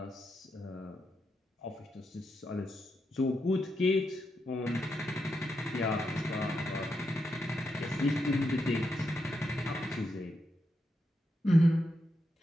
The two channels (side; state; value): both; normal; correlation 0.84